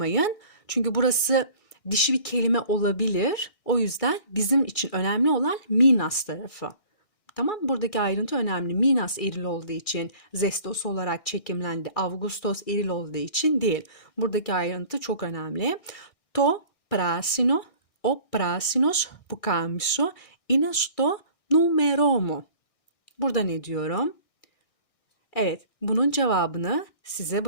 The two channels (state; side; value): late; right; 1.6 ms